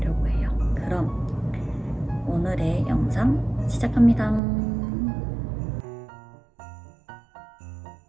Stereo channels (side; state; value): left; drops out; at 4.4 s